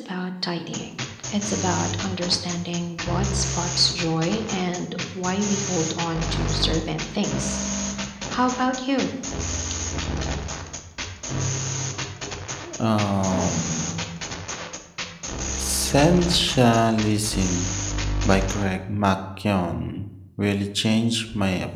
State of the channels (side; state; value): both; identical; correlation 1.00